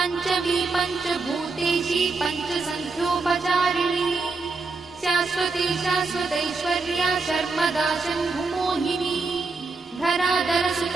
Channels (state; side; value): quieter; left; 4.0 dB